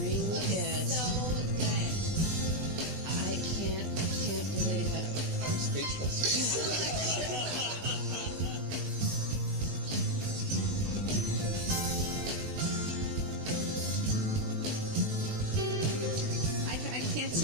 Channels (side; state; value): left; late; 20 ms